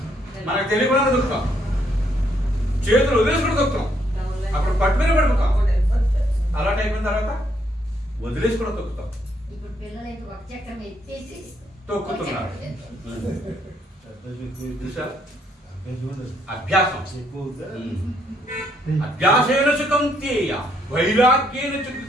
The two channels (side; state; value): both; normal; correlation 0.72